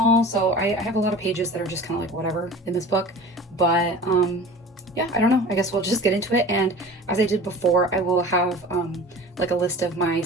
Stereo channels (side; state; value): both; normal; correlation 0.39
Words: so I have a lot of pages that are just kind of like whatever in this book. But yeah, I don't know. I guess we'll just get into it. And as I did before, I will have like a list of my